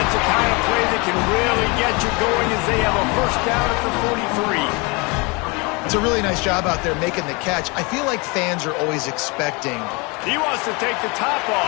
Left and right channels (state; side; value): quieter; right; 28.4 dB